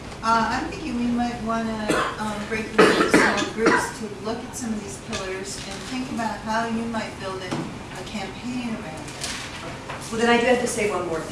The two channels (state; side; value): identical; both; correlation 1.00